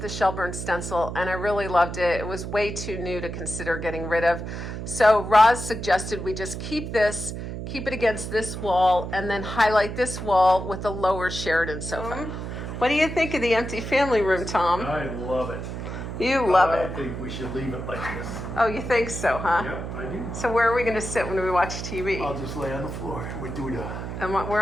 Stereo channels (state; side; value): noise; right; hum, 6 dB below the sound